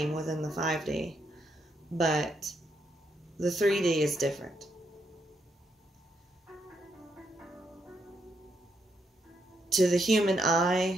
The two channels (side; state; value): both; normal; correlation 0.78